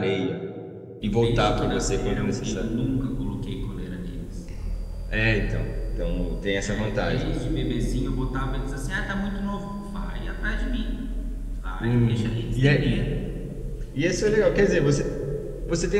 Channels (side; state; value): both; identical; correlation 1.00